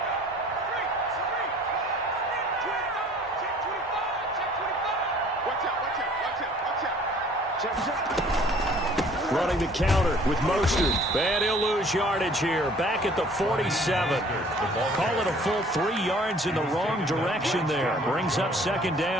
Running the counter with Mostert. And he'll lose yardage here. Back at the 47. Call it a full 3 yards in the wrong direction there. Brings up second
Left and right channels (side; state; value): both; normal; correlation 0.53